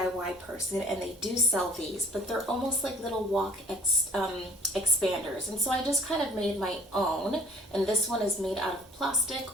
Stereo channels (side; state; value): both; normal; correlation 0.52